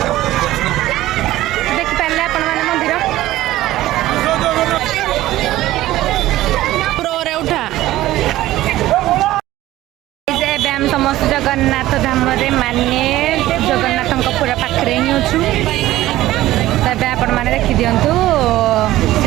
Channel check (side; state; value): left; quieter; 15.6 dB